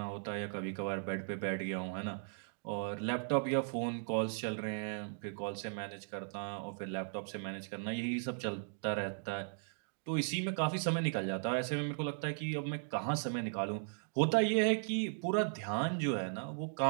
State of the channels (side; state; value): left; silent; digital silence